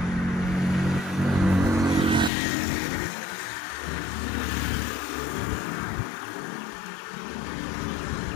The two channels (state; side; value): drops out; right; at 2.3 s